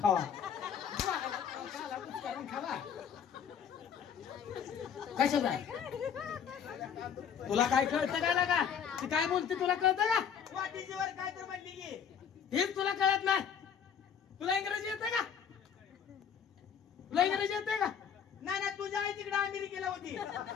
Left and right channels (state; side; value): quieter; right; 7.6 dB